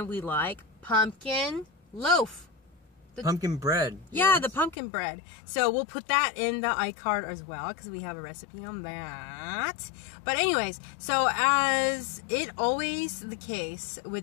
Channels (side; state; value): right; drops out; at 4.8 s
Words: we like pumpkin loaf. Pumpkin bread. Yeah, the pumpkin bread. So we'll put that in the iCard as well, because we have a recipe on that. But anyways, so as it always the case